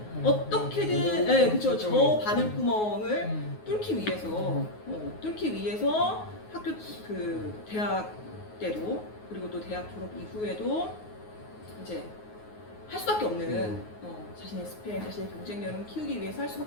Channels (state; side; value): late; right; 9.5 ms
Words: 어떻게든 그렇죠. 저 바늘구멍을 뚫기 위해서 학교 그 대학 때도 그리고 또 대학 졸업 이후에도 이제 할 수밖에 없는 자신의 스펙, 자신의 경쟁력을 키우기 위해서 할